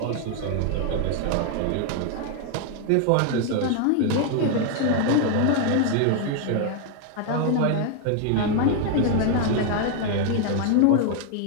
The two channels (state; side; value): different; both; correlation 0.00